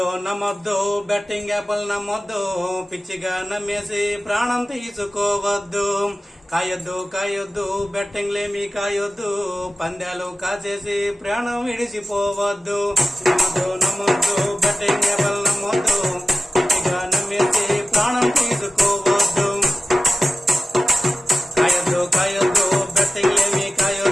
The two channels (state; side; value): normal; both; correlation 0.94